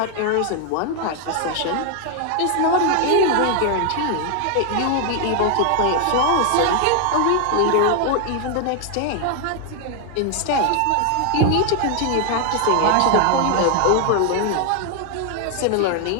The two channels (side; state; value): both; different; correlation 0.00